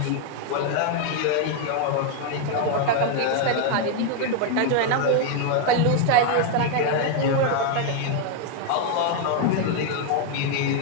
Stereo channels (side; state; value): both; different; correlation 0.01